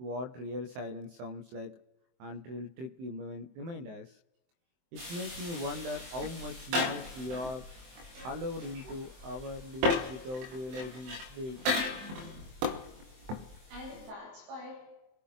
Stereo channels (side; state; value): left; late; 23 ms